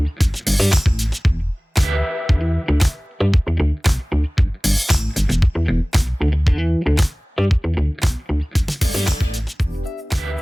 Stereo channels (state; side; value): normal; both; correlation 0.98